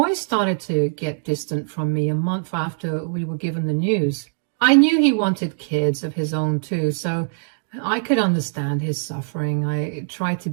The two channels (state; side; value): silent; left; digital silence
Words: started to get distant from me a month after we were given the news. I knew he wanted kids of his own too, so I could understand his suffering. I tried to